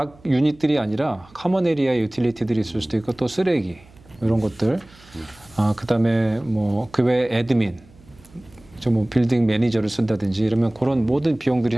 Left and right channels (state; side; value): noise; right; hum, 26 dB below the sound